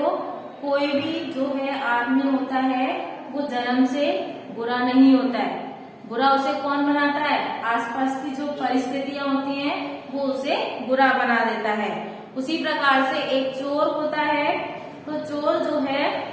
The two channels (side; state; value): both; identical; correlation 1.00